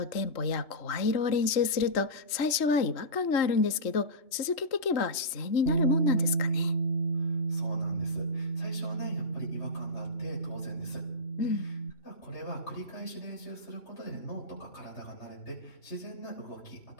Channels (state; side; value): late; right; 3.1 ms